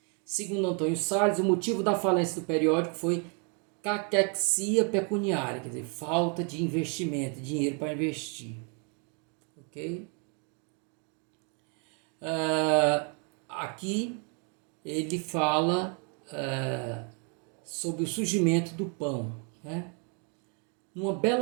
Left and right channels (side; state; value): left; quieter; 37.9 dB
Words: Segundo Antônio Salles, o motivo da falência do periódico foi caquexia pecuniária, quer dizer, falta de investimento, dinheiro para investir. Ok? Aqui ele fala sobre o surgimento do pão, né? Numa